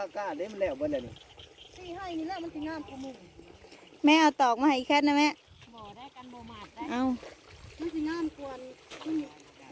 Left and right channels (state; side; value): identical; both; correlation 1.00